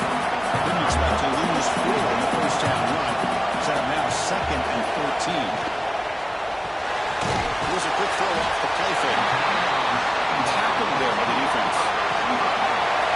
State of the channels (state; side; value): identical; both; correlation 1.00